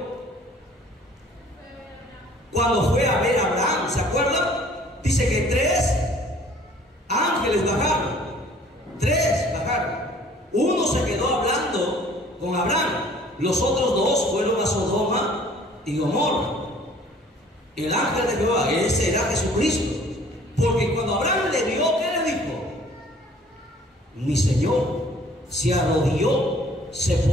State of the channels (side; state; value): both; normal; correlation 0.54